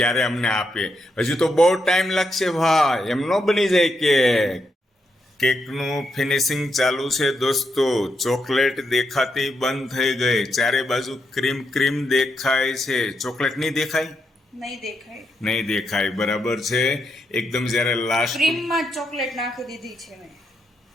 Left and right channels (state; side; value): normal; both; correlation 0.81